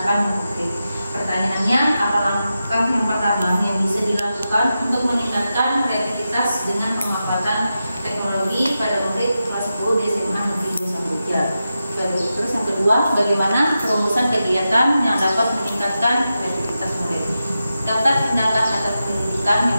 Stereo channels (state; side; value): inverted; both; correlation -0.90